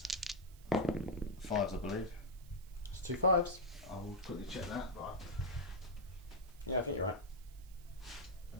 5s, I believe. It's 2 5s. I'll quickly check that. But Yeah, I think you're right.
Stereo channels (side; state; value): right; noise; hiss, 25 dB below the sound